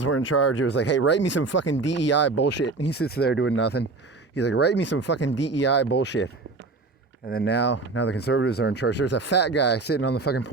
were in charge, it was like, hey, write me some fucking DEI bullshit. And he sits there doing nothing. He's like, write me some fucking DEI bullshit. And then now the conservatives are in charge. There's a fat guy sitting on the fucking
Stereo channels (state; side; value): quieter; left; 3.7 dB